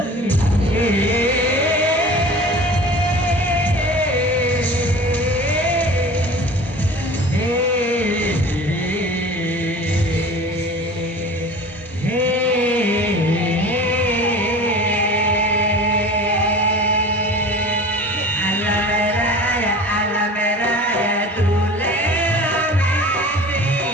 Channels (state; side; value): normal; both; correlation 0.39